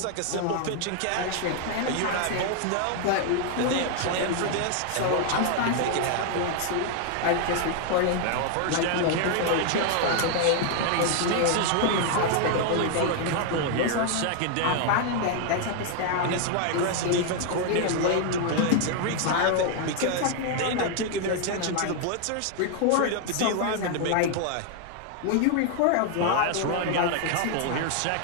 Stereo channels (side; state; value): both; different; correlation 0.00